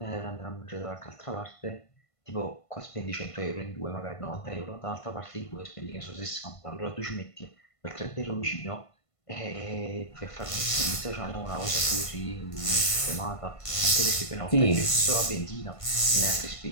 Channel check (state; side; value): late; right; 1.5 ms